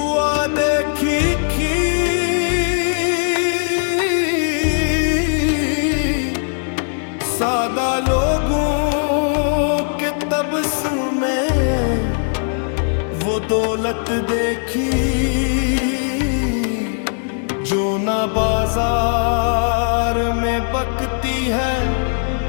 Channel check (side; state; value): right; silent; digital silence